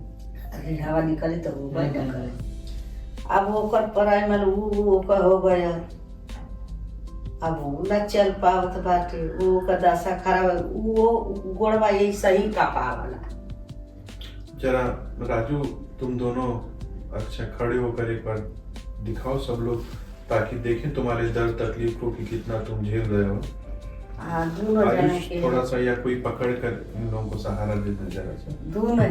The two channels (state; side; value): identical; both; correlation 1.00